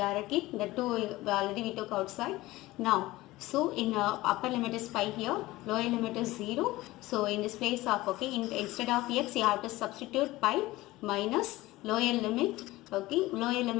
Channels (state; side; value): quieter; right; 18.5 dB